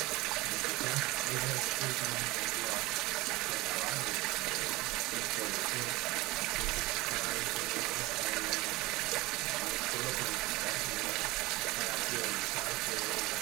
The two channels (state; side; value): quieter; left; 20.8 dB